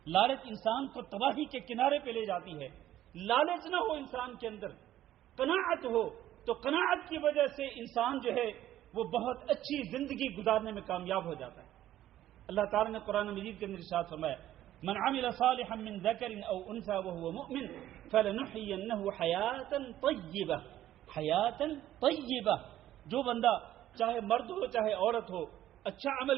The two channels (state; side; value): quieter; left; 12.9 dB